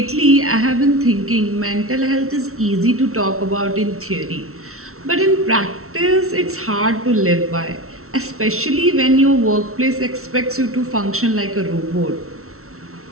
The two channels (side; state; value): left; late; 0.63 ms